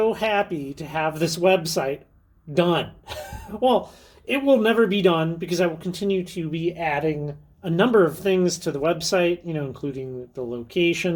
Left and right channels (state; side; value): identical; both; correlation 1.00